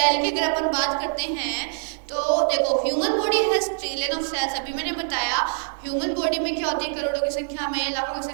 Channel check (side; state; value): left; silent; digital silence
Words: की अगर अपन बात करते हैं तो देखो human body has trillion of cells. अभी मैंने बताया ह्यूमन बॉडी में क्या होती है, करोड़ों की संख्या में लाखों की